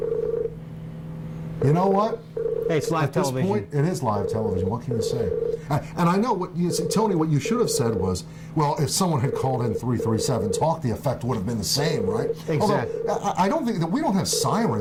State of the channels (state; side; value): identical; both; correlation 1.00